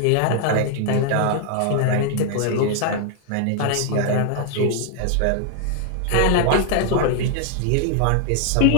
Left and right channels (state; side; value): different; both; correlation 0.00